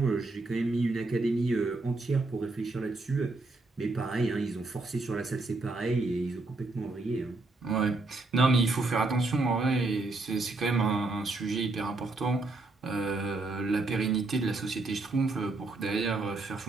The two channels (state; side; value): quieter; left; 3.3 dB